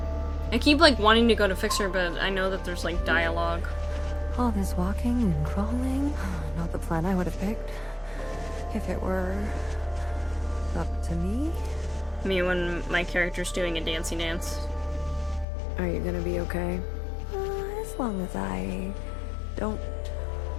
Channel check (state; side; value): drops out; right; at 15.5 s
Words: I keep like wanting to go to fix her, but I know that there's like dialogue. All this walking and crawling, not the plan I would have picked. If it were up to me. Me when my character's doing a dancey dance. Are you gonna be okay? As long as I don't